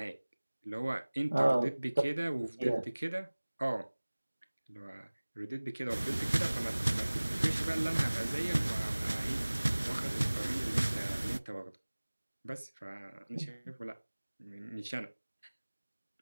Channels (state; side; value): inverted; both; correlation -1.00